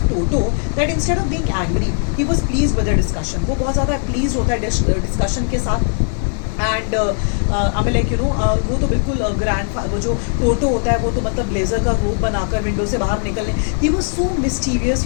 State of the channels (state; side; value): silent; right; digital silence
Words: Toto that instead of being angry, he was pleased with the discussion. वो बहुत ज़्यादा pleased होता है discussion के साथ. And वो तो बिल्कुल वो जो Toto होता है वो तो मतलब ब्लेजर का रूप बनाकर विंडो से बाहर निकलने. He was so mischievous,